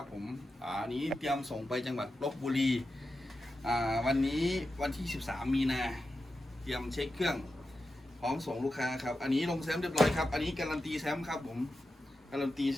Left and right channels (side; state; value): both; normal; correlation 0.90